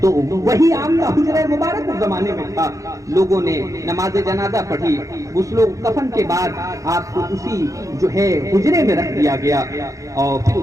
تو وہی آپ کا حجرہ مبارک اس زمانے میں تھا۔ لوگوں نے نماز جنازہ پڑھی، غسل و کفن کے بعد آپ کو اسی جو ہے حجرے میں رکھ دیا گیا، اور پھر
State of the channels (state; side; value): late; left; 0.16 ms